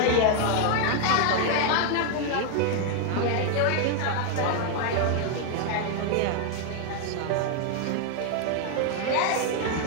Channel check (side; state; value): both; different; correlation 0.01